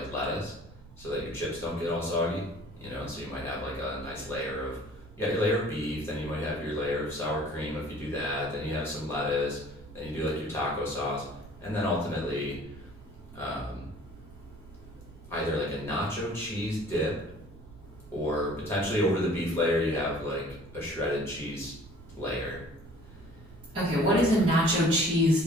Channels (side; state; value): right; noise; rumble, 19 dB below the sound